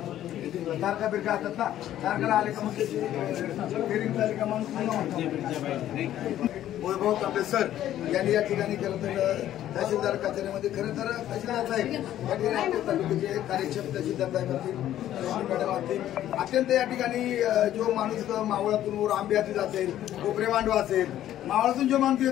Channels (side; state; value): right; quieter; 12.3 dB